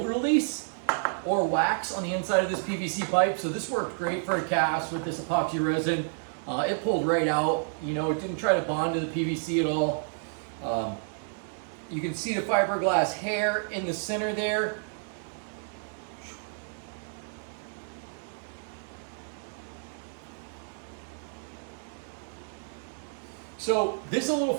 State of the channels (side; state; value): left; silent; digital silence